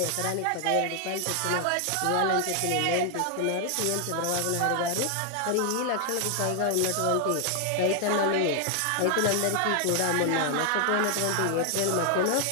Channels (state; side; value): different; both; correlation 0.00